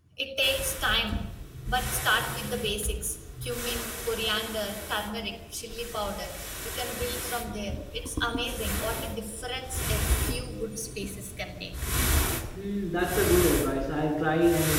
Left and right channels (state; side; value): identical; both; correlation 1.00